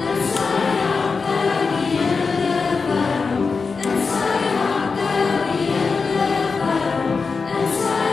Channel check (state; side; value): quieter; right; 4.7 dB